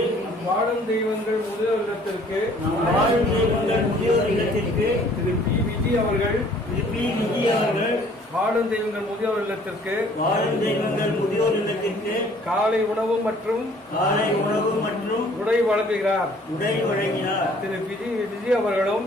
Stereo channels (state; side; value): normal; both; correlation 0.57